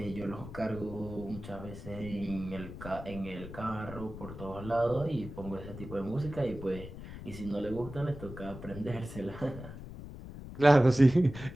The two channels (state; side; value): noise; left; rumble, 12 dB below the sound